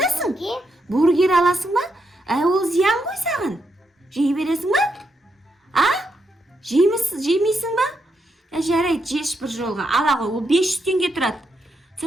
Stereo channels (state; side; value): normal; both; correlation 0.81